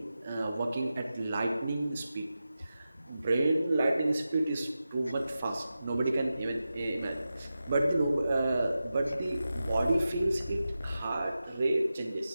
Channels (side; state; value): both; inverted; correlation -0.92